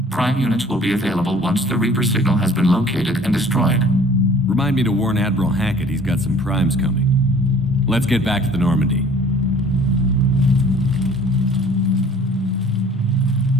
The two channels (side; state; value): both; normal; correlation 0.51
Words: Prime units will be available once the Reaper signal has been located and destroyed. Remind me to warn Admiral Hackett he's got some primes coming. Let's get back to the Normandy.